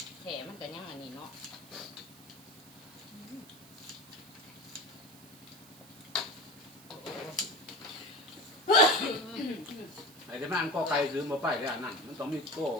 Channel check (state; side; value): noise; right; hiss, 20 dB below the sound